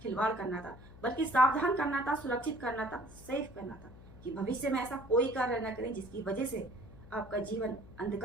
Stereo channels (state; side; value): noise; left; hum, 19 dB below the sound